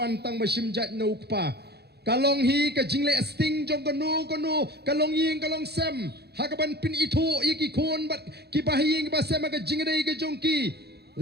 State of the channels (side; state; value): left; late; 0.48 ms